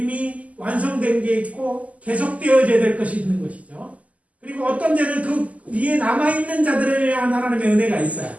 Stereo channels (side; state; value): left; late; 0.071 ms